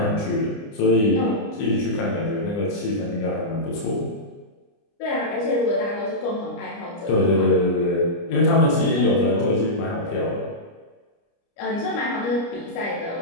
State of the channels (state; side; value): late; right; 29 ms